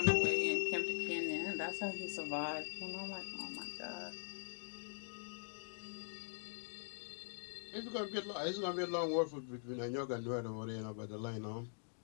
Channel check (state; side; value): silent; right; digital silence